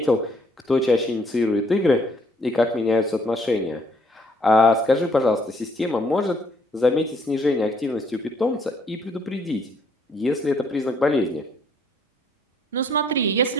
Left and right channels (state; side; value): normal; both; correlation 0.66